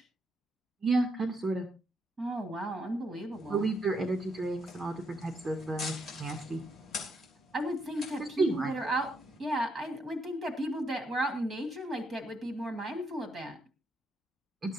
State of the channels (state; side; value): normal; both; correlation 0.77